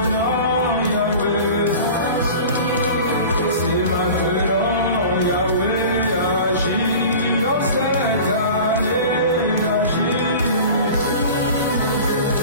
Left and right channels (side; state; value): both; inverted; correlation -0.38